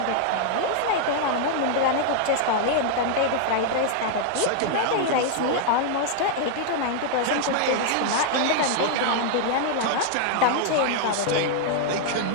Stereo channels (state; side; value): different; both; correlation -0.01